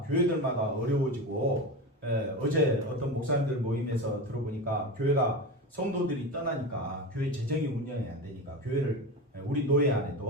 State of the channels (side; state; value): both; normal; correlation 0.24